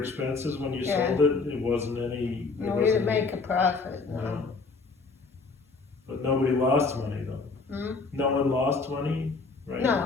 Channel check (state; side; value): quieter; right; 4.1 dB